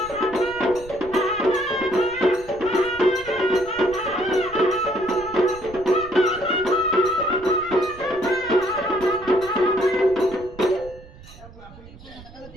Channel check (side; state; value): right; noise; rumble, 19 dB below the sound